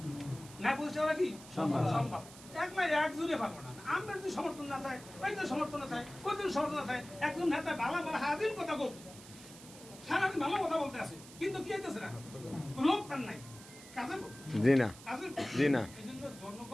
ন্যায় প্রতিষ্ঠা করা কি সম্ভব একলা একজনে পারবো না। আমরা যদি সমর্থন না থাকে ওইজন সমর্থন না থাকে ওইজন সমর্থন না থাকে একজন নেতা ভালো ভালো হাদিন কথা বলতো সারাদিন ভালো কথা বলতে আছে কিন্তু কি হইতেছে না লোক তার নাই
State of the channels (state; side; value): noise; right; hiss, 18 dB below the sound